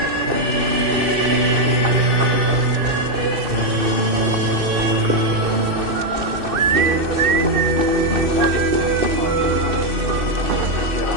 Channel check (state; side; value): late; left; 2.6 ms